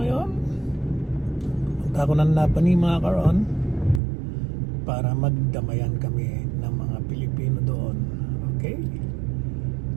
ngayon, punta ko ng Napani mga karon para magdamayan kami ng mga Pilipino doon. Okay?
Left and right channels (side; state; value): left; drops out; at 4.0 s